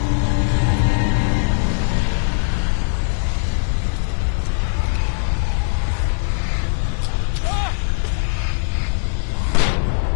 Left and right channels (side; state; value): right; silent; digital silence